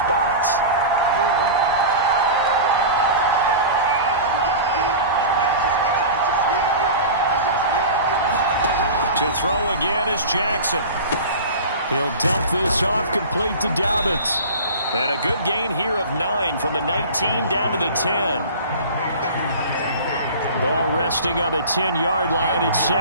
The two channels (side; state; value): both; inverted; correlation -0.34